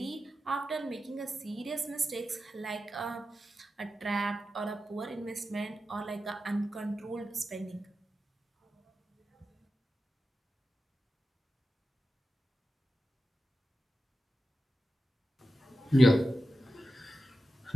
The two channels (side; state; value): both; normal; correlation 0.92